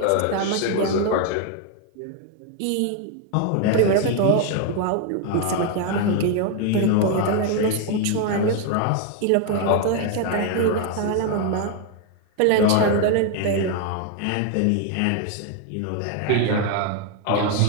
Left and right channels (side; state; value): both; different; correlation 0.01